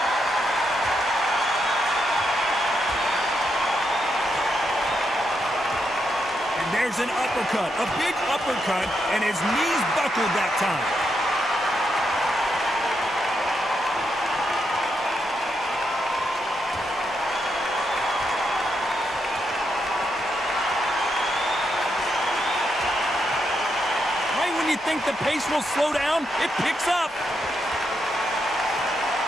There's an uppercut, a big uppercut, and his knees buckled that time. Right when you think the pace will slow down, it picks up.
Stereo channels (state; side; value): normal; both; correlation 0.81